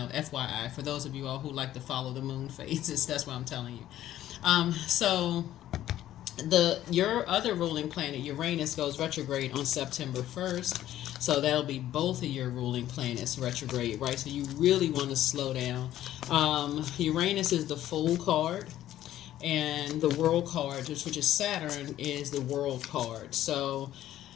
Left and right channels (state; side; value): quieter; right; 12.9 dB